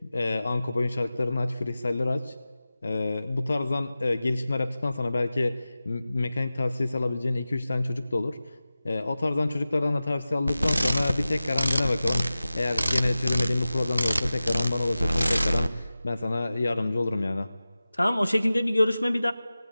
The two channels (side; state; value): both; inverted; correlation -0.96